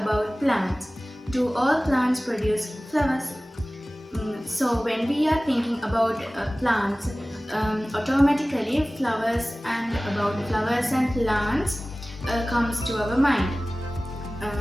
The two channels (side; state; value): both; normal; correlation 0.98